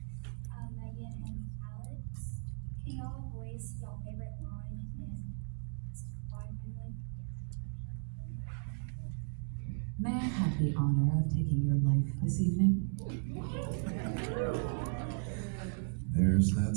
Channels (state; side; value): silent; left; digital silence